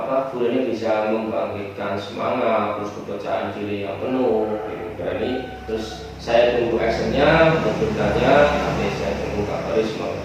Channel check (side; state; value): both; identical; correlation 1.00